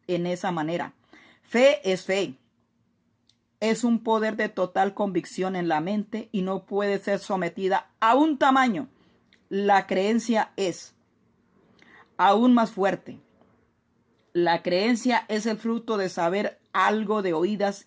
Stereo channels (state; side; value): identical; both; correlation 1.00